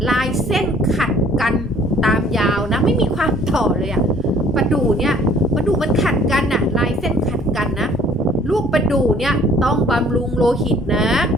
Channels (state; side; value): normal; both; correlation 0.56